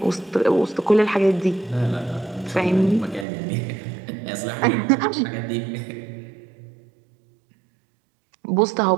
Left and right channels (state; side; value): drops out; left; at 3.2 s